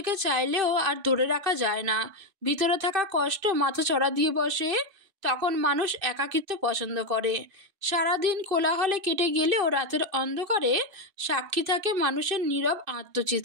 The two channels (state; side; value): late; left; 2.6 ms